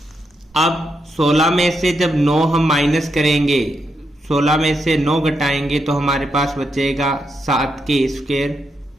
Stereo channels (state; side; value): normal; both; correlation 0.82